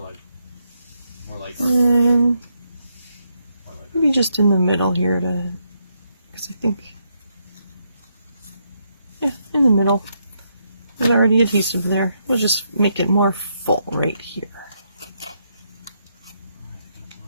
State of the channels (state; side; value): inverted; both; correlation -0.78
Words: And maybe just in the middle here, because I think, yeah, in the middle. There's already adhesive there. We'll just make it more full right here.